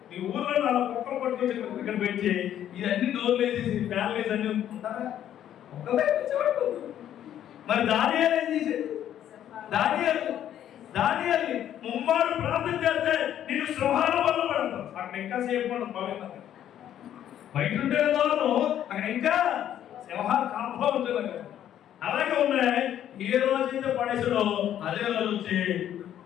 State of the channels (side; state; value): right; quieter; 10.8 dB